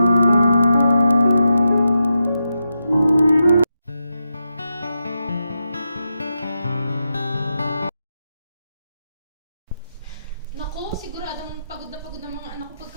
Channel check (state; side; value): inverted; both; correlation -0.87